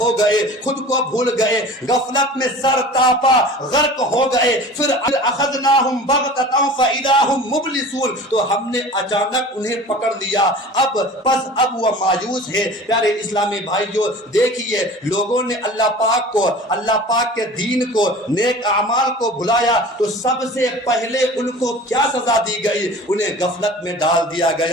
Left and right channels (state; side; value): normal; both; correlation 0.40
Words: گئے، خود کو بھول گئے، غفلت میں سر تاپا غرق ہو گئے۔ پھر اخذناہم بغتۃ فاذا ہم مبلسون، تو ہم نے اچانک انہیں پکڑ لیا، اب وہ مایوس ہے۔ پیارے اسلامی بھائیوں، دیکھیے لوگوں نے اللہ پاک کے دین کو، نیک اعمال کو بھلایا تو سب سے پہلے ان کو کیا سزا دی گئی؟ انہیں غفلت میں ڈال دیا